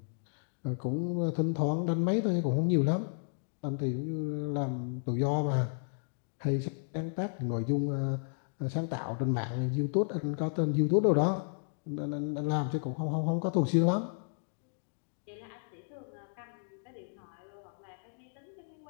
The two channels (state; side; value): silent; right; digital silence